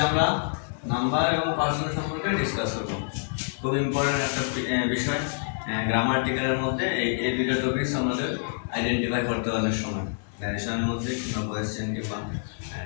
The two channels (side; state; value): right; silent; digital silence